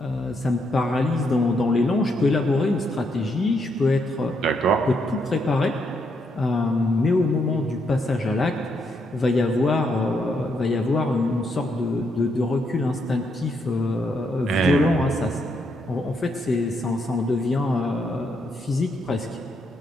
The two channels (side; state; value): both; normal; correlation 0.77